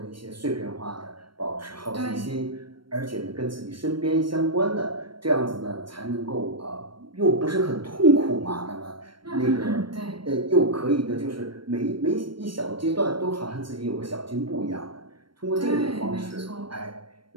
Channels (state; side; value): late; left; 0.73 ms